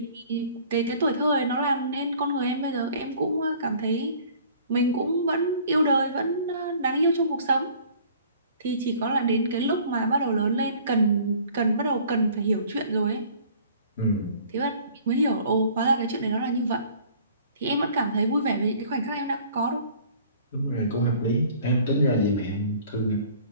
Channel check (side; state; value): both; inverted; correlation -0.52